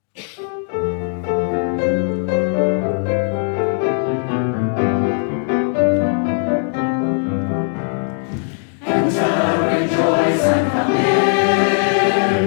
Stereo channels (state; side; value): silent; right; 60 dB below the other